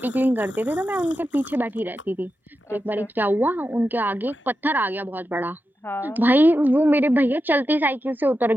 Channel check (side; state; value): both; normal; correlation 0.90